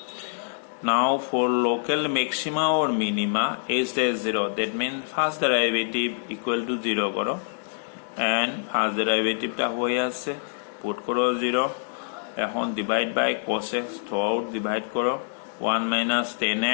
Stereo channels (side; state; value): right; silent; 61 dB below the other